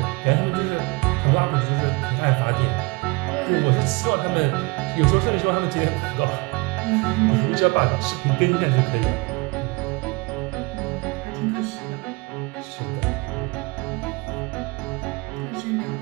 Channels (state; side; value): quieter; left; 26.7 dB